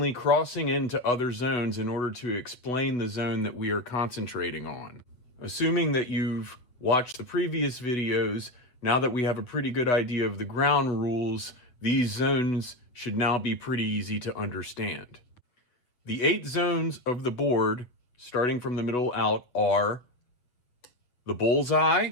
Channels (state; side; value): late; right; 8.0 ms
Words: crossing into other zones in order to explain the zone that we are concentrating on. Assuming that you've watched the previous videos, now that we have a pretty good idea of the ground rules, these zones should now be pretty easy to understand. The 8 zones of the board, starting from the middle out, are the bullseye,